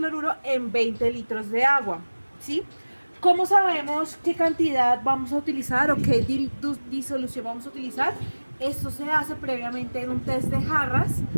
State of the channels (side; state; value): both; inverted; correlation -1.00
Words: en 20 litros de agua, ¿sí? ¿Cómo sabemos qué cantidad vamos a utilizar o qué disolución vamos a utilizar? Esto se hace previamente en un test de jarras,